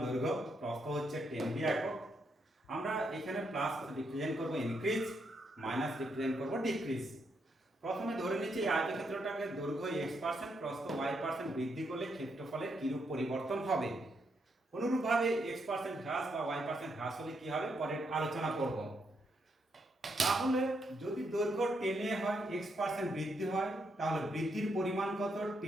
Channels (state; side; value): normal; both; correlation 0.78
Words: দৈর্ঘ্য, প্রস্থ হচ্ছে 10 একক। আমরা এখানে প্লাস রিপ্রেজেন্ট করব ইনক্রিজ, মাইনাস রিপ্রেজেন্ট করব ডিক্রিজ। প্রথমে ধরে নিচ্ছি এই আয়তক্ষেত্রটাকে দৈর্ঘ্য x%, প্রস্থ y% বৃদ্ধি করলে ক্ষেত্রফলের কিরূপ পরিবর্তন হবে। অনুরূপভাবে x% হ্রাস বা y% হ্রাস হলে কি হবে পরে আলোচনা করব। তাহলে যদি দৈর্ঘ্য 10 হয়, x% বৃদ্ধি হয়, তাহলে বৃদ্ধির পরিমাণ কত?